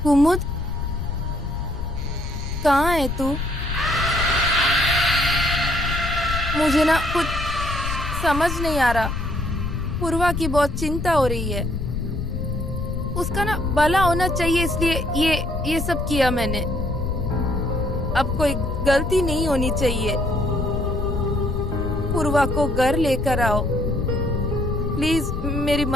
कुमुद, कहाँ है तू? मुझे ना कुछ समझ नहीं आ रहा। पूर्वा की बहुत चिंता हो रही है। उसका ना भला होना चाहिए, इसलिए ये सब किया मैंने। अब कोई गलती नहीं होनी चाहिए। पूर्वा को घर लेकर आओ, प्लीज मेरी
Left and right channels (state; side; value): noise; left; rumble, 4 dB below the sound